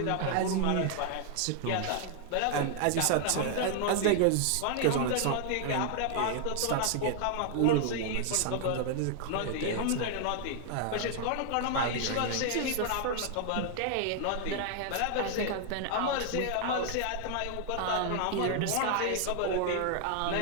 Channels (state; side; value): different; both; correlation 0.00